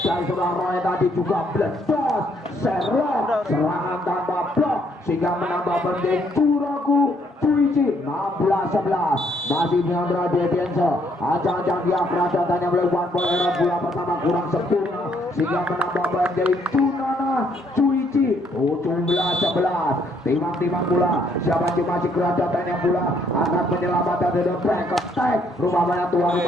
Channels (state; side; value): normal; both; correlation 0.69